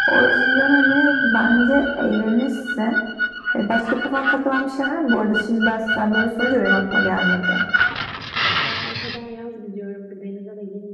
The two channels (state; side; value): identical; both; correlation 1.00